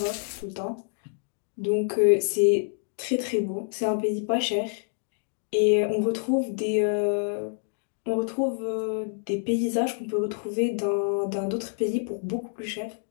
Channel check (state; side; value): silent; right; digital silence